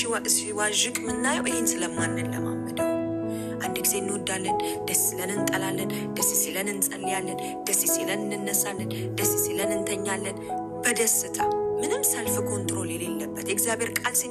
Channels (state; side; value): identical; both; correlation 1.00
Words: ሲዋዥቅ ምናየው ይሄን ስለማንለማመደው። አንድ ጊዜ እንወዳለን፣ ደስ ሲለን እንጠላለን፣ ደስ ሲለን እንጸልያለን፣ ደስ ሲለን እንነሳለን፣ ደስ ሲለን እንተኛለን በደስታ ምንም ሰልፍ ኮንትሮል የሌለበት። የእግዚአብሔር ቃል